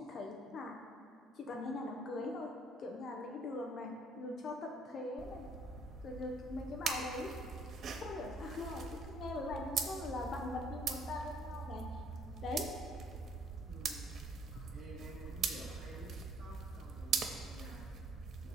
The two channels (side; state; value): both; normal; correlation 0.62